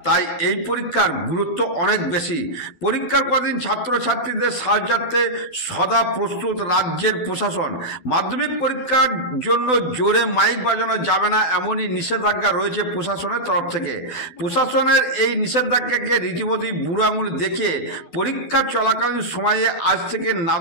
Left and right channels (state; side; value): late; right; 12 ms